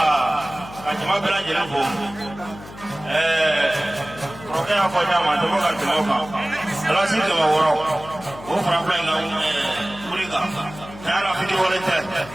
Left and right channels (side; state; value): left; noise; hum, 16 dB below the sound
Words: ajima bela jela bo roke ya ko nyama to ga tumo ka ala si to woro o fra fra na kuriga ala fiti wala te